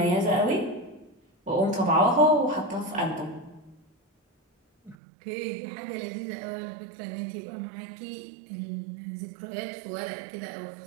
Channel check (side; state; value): left; drops out; at 5.0 s